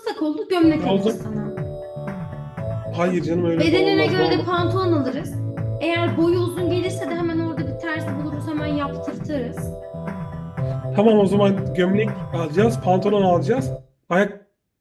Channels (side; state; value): both; identical; correlation 1.00